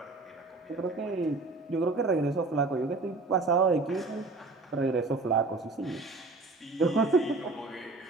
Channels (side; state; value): left; quieter; 3.5 dB